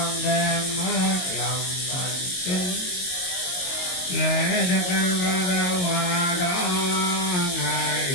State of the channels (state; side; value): late; right; 22 ms